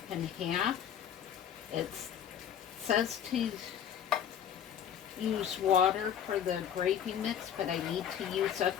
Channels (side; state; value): right; quieter; 9.1 dB